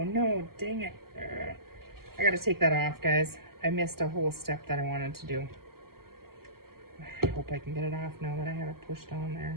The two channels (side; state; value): left; late; 0.93 ms